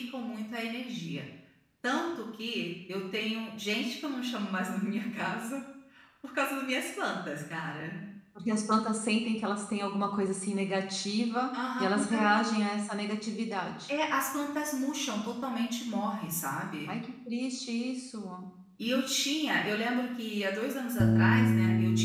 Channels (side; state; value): both; identical; correlation 1.00